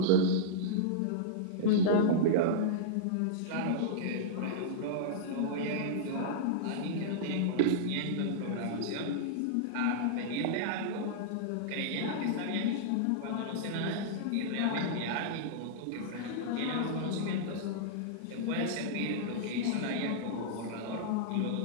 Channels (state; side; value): different; both; correlation -0.02